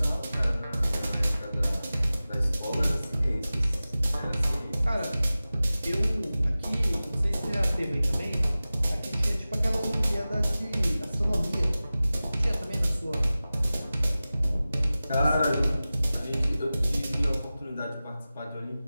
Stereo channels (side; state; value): both; inverted; correlation -0.96